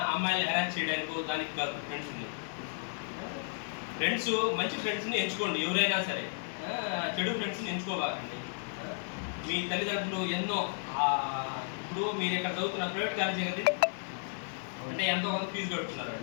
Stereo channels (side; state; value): right; silent; digital silence